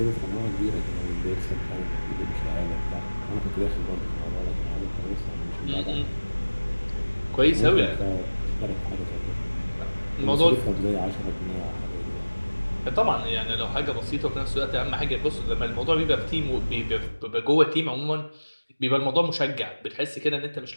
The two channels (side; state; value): both; inverted; correlation -1.00